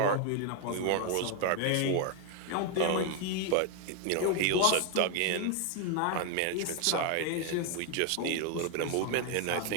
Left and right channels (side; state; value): both; different; correlation 0.01